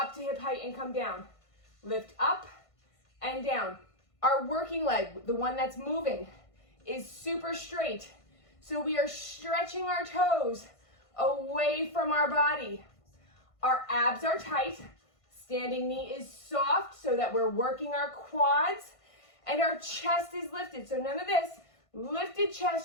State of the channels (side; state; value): right; late; 1.5 ms